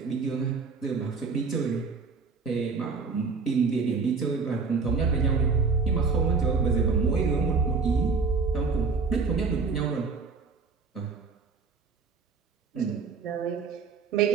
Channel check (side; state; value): left; quieter; 4.8 dB